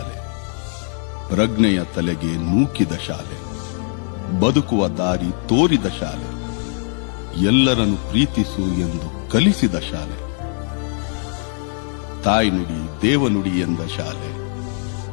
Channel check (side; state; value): right; silent; 65 dB below the other